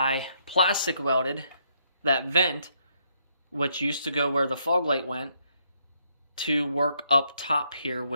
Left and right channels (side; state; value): both; inverted; correlation -0.73